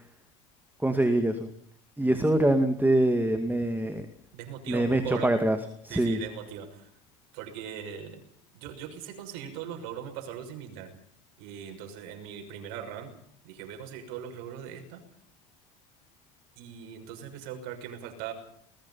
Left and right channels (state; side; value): normal; both; correlation 0.83